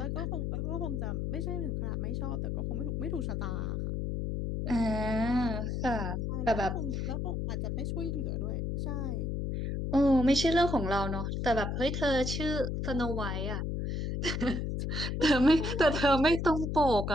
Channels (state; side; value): noise; left; hum, 1 dB below the sound